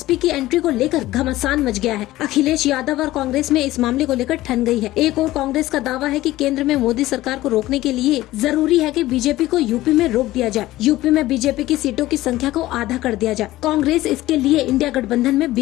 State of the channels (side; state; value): right; quieter; 16.5 dB